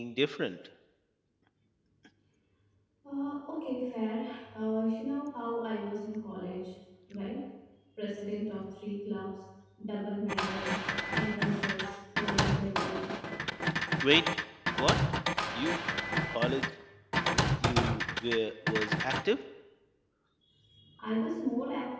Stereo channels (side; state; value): both; identical; correlation 1.00